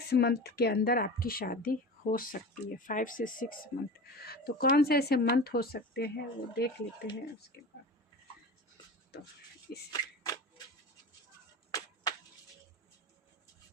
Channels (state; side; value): normal; both; correlation 0.31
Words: मंथ के अंदर आपकी शादी हो सकती है। 5 से 6 मंथ। तो कौन से ऐसे मंथ हो सकते हैं वो देख लेते हैं उसके बाद। तो इस